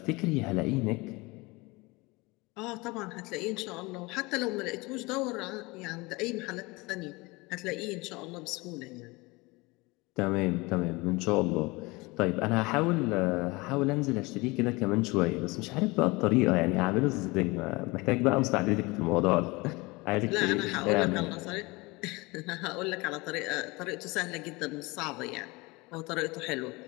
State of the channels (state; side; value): quieter; right; 24.2 dB